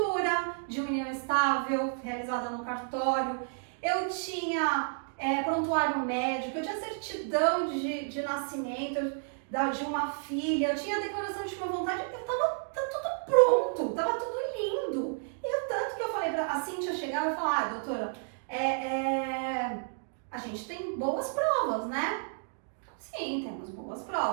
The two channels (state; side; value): silent; left; digital silence